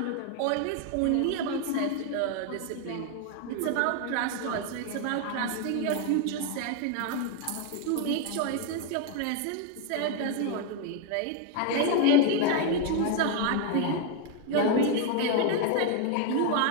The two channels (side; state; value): both; different; correlation 0.01